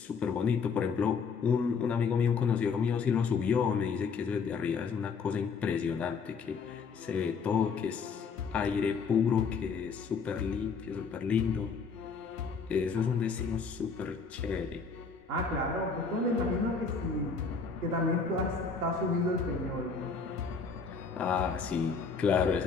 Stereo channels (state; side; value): quieter; right; 5.3 dB